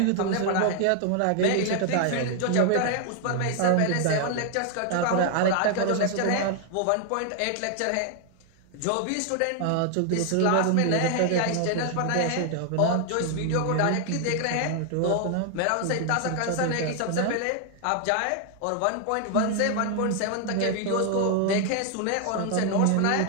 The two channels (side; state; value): both; different; correlation 0.00